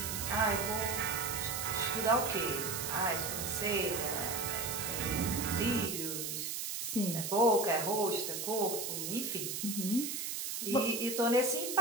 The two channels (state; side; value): noise; right; hiss, 3 dB below the sound